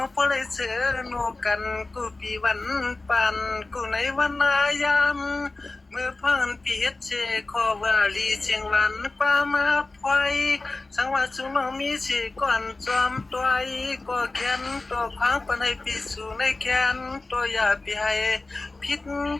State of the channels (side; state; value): right; quieter; 3.3 dB